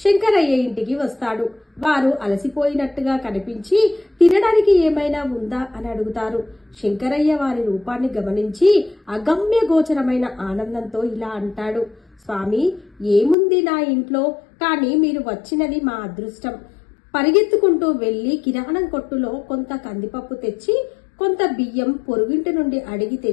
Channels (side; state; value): right; drops out; at 13.4 s